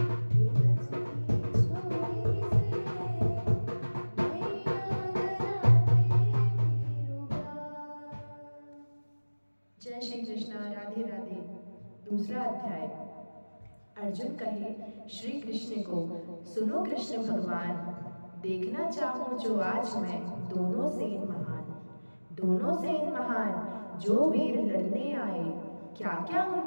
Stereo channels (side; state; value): both; inverted; correlation -1.00